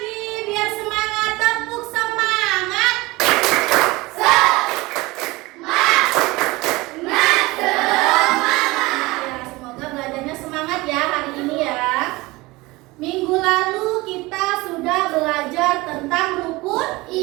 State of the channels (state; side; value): quieter; left; 21.7 dB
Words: biar semangat, tepuk semangat. Ya, semoga belajarnya semangat ya hari ini ya. Minggu lalu kita sudah belajar tentang rukun